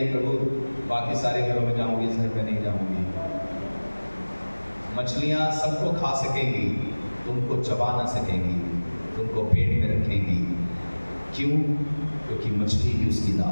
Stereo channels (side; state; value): both; inverted; correlation -1.00